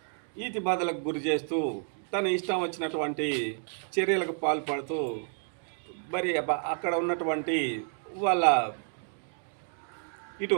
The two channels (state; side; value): silent; left; 58 dB below the other